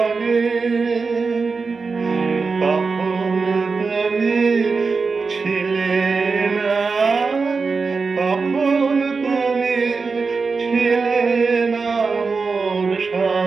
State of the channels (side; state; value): left; quieter; 4.6 dB